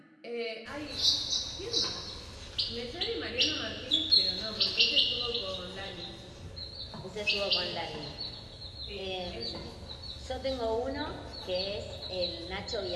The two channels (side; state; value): both; identical; correlation 1.00